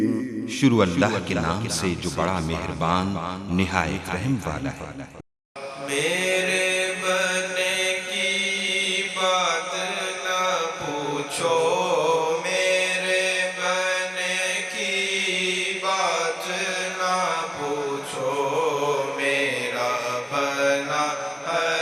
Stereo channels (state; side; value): identical; both; correlation 1.00